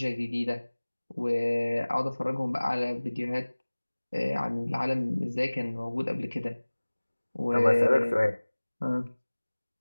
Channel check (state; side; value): inverted; both; correlation -1.00